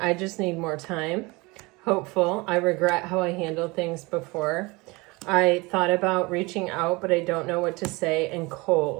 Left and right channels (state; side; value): quieter; left; 24.7 dB